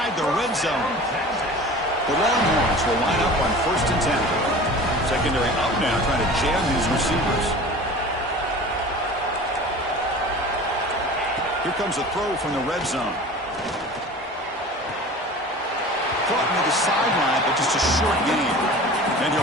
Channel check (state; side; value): normal; both; correlation 0.39